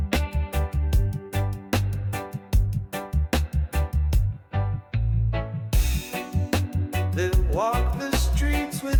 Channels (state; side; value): identical; both; correlation 1.00